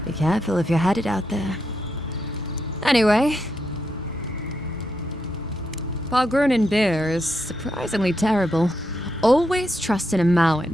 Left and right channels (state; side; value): normal; both; correlation 0.82